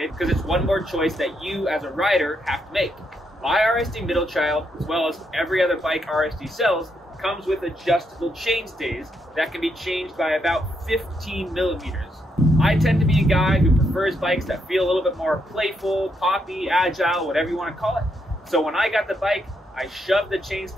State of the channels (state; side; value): normal; both; correlation 0.78